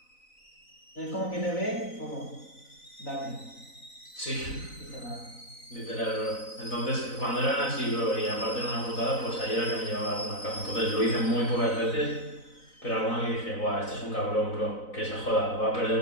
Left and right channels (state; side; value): late; right; 4.0 ms